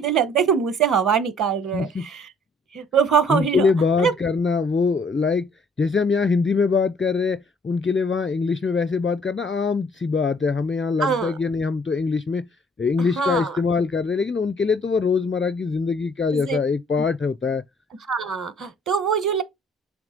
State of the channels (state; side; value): normal; both; correlation 0.59